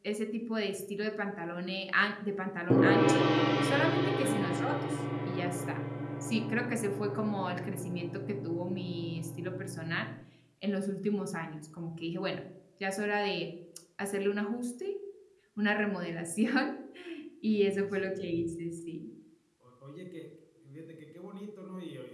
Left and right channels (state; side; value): identical; both; correlation 1.00